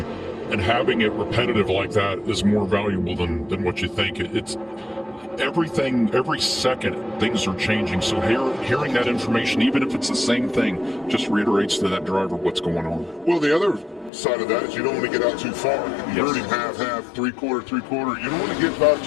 and having it repetitive like that is more valuable than what you think. It's everything, every second things are changing. So hearing that information, even if it's the same thing, just reiterates to that driver what's going on. Well, the other side of that is you don't want to get out too far. You Yes. heard him half, 3/4, 3/4. You don't want to get about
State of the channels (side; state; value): right; drops out; at 14.1 s